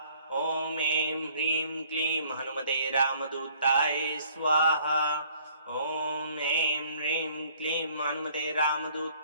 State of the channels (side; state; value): both; inverted; correlation -0.58